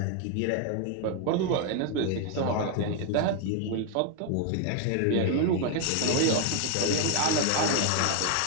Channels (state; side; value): different; both; correlation 0.01